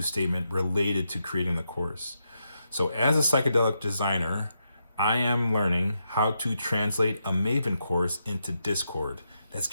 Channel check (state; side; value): inverted; both; correlation -0.84